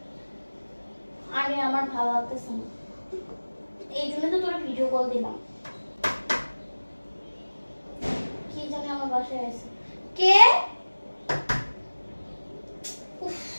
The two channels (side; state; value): both; inverted; correlation -1.00